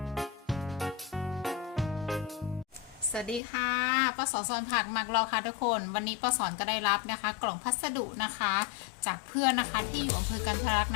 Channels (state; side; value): drops out; right; at 3.4 s